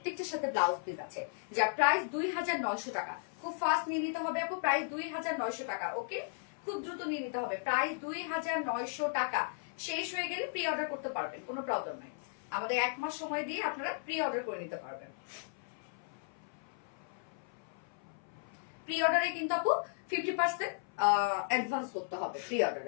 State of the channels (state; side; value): silent; right; 54 dB below the other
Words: সাথে ব্লাউজ পিস আছে, যার প্রাইস 2900 টাকা। খুব ফাস্ট নিয়ে নিতে হবে আপু, প্রাইস 2900 টাকা। ওকে, খুব দ্রুত নিয়ে নিতে হবে, প্রাইস 2900 টাকা। শেষ হয়ে গেলে প্রি অর্ডার করতে পারবেন, কোনো প্রবলেম নাই। আমাদের 1 মাস সময় দিয়ে আপনারা প্রি অর্ডার করে নিতে পারবেন। প্রি অর্ডারে কিন্তু আপু 50% অ্যাডভান্স করতে হবে। প্রি